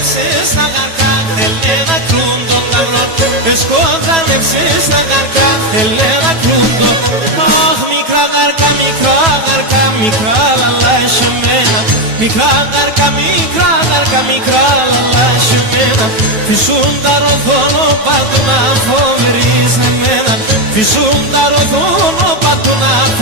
τα γαρκά, θέλε να κρούν τον ταυρόν. Εσκόδανευσες τα γαρκά, θέλε να κρούν τον. Αχ, μικρά γαρκά, μικρά γαρκά, μικρά λαλά εσεμένα. Μικρά γαρκά, μικρά γαρκά, μικρά λαλά εσεμένα. Φυσούν τα ροδόνο παντού να φοβερείς εμένα. Φυσούν τα ροδόνο παντού να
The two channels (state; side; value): late; left; 9.1 ms